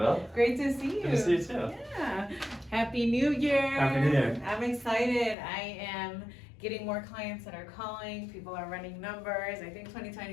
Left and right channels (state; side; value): drops out; right; at 5.4 s